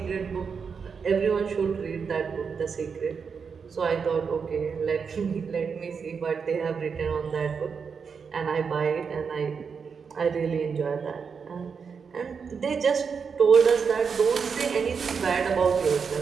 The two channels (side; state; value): left; quieter; 5.9 dB